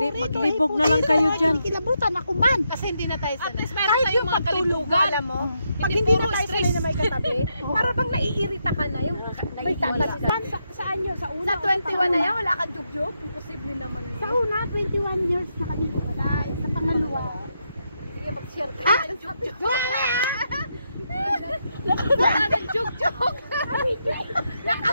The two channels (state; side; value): inverted; both; correlation -0.81